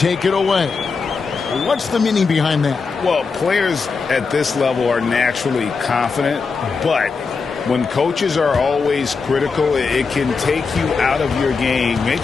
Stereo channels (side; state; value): right; quieter; 4.9 dB